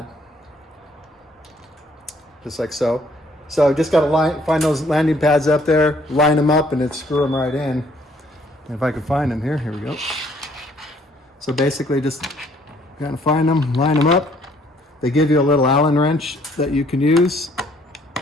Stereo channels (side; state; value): both; normal; correlation 0.63